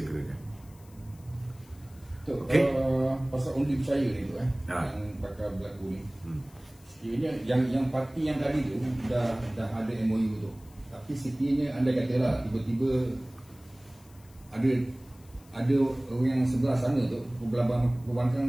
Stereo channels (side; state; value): left; noise; hiss, 27 dB below the sound